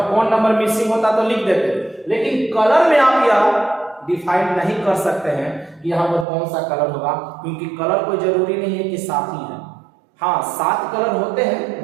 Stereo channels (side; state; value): left; drops out; at 6.2 s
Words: कौन नंबर मिसिंग होता तो लिख देते, लेकिन कलर में आप यह डिफाइन नहीं कर सकते हैं कि यहाँ पर कौन सा कलर होगा, क्योंकि कलर कोई जरूरी नहीं है कि 7 ही है। हाँ 7 कलर होते हैं,